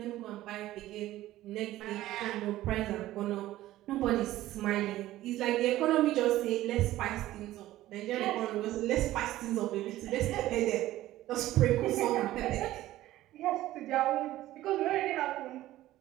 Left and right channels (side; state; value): left; quieter; 15.2 dB